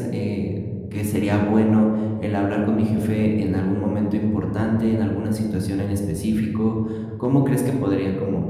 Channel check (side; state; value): both; identical; correlation 1.00